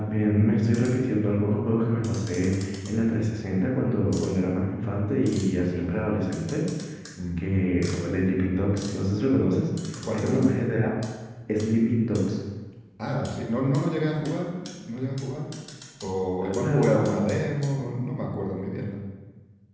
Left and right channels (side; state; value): both; identical; correlation 1.00